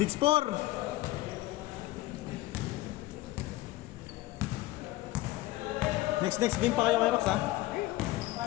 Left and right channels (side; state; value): right; quieter; 17.6 dB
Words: Next game pa kayo kay Rox, ha?